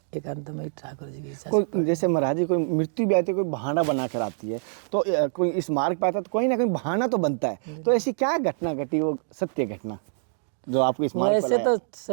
एकांतमय ठाकुर जी की इच्छा। कोई जैसे महाराज जी कोई मृत्यु भी आती है, कोई बहाना बना कर आती है, तो कोई इस मार्ग पर आता है तो कोई ना कोई बहाना तो बनता है। तो ऐसी क्या घटना घटी, वो सत्य घटना जो आपको इस मार्ग पर वैसे तो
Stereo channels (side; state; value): left; silent; digital silence